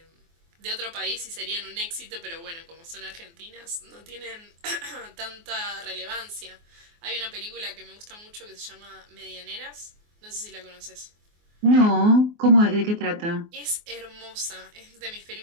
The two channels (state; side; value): late; left; 24 ms